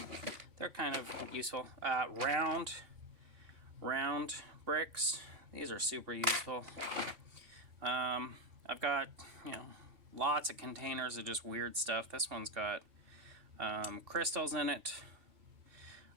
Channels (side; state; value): left; late; 2.9 ms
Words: They're kind of useful. Round bricks. These are super useful. I've got, lots of containers of just weird stuff. This one's got crystals in it.